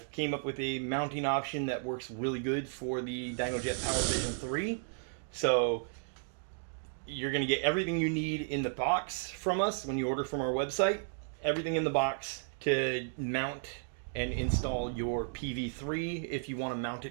came up with a mounting option that works really good for the Dynojet PowerVision 3. So you're going to get everything you need in the box from us when you order from our website. Everything in the box to mount and install your PV3 if you want to mount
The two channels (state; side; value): silent; left; digital silence